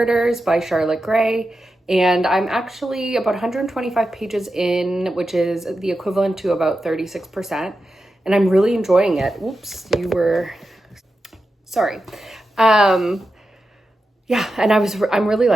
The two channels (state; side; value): normal; both; correlation 0.90